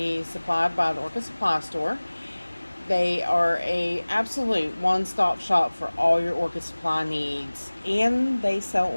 supplied by the Orchid Supply Store. They are a absolute one-stop shop for all your orchid supply needs, and they sell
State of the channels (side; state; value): both; inverted; correlation -1.00